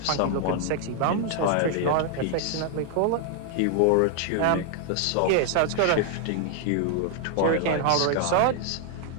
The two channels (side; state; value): both; different; correlation 0.00